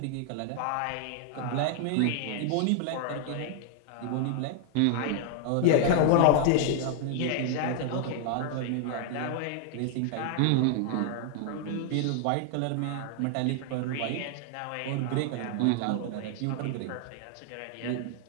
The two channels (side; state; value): both; different; correlation -0.01